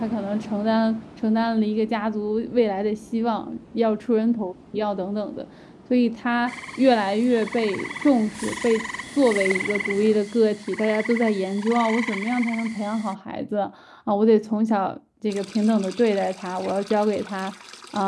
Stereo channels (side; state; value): both; identical; correlation 1.00